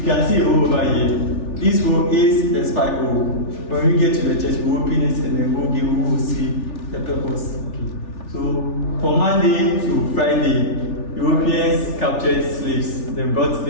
can see a hole over here. This hole is the spike hole. When we get to the church, we open it and then we will see the purpose. Okay. So from Monday to Friday, Europeans captured slaves. They brought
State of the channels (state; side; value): late; right; 3.4 ms